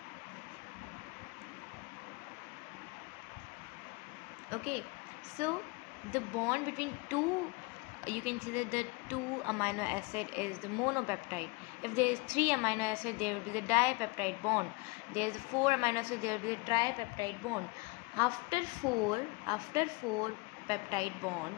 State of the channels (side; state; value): right; quieter; 26.6 dB